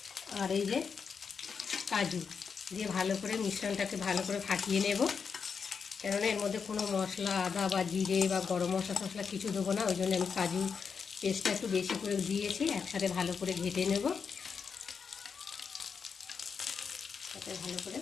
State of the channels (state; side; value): quieter; right; 6.0 dB